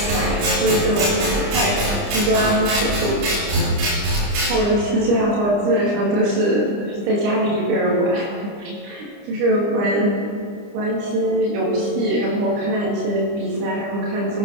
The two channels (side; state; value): left; late; 29 ms